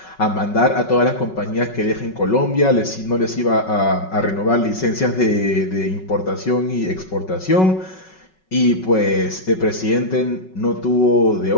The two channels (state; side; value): late; right; 5.4 ms